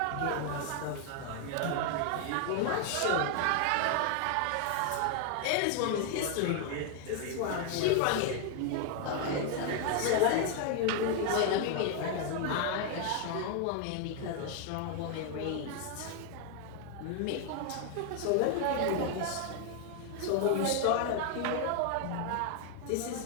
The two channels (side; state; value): both; different; correlation 0.00